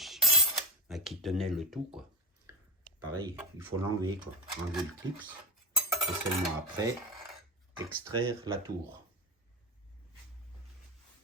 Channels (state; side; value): normal; both; correlation 0.21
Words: qui tenait le tout, quoi. Pareil, il faut l'enlever, quoi. Enlever le clips et seulement après extraire la tour.